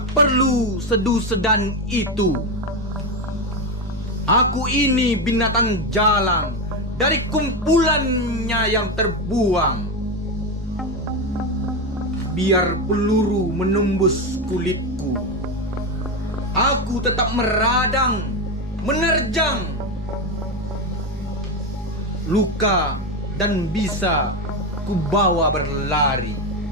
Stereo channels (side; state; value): both; normal; correlation 0.12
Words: perlu sedu-sedan itu. Aku ini binatang jalang dari kumpulannya yang terbuang. Biar peluru menembus kulitku, aku tetap meradang, menerjang luka dan bisa kubawa berlari.